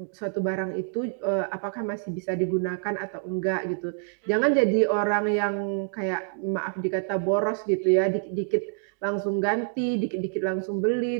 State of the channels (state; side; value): silent; left; 56 dB below the other